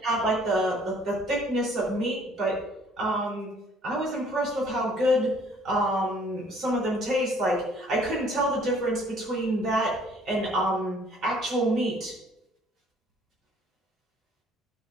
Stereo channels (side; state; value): both; normal; correlation 0.58